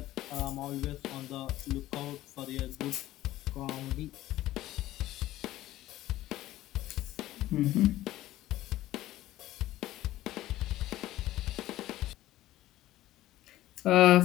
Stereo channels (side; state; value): right; quieter; 15.2 dB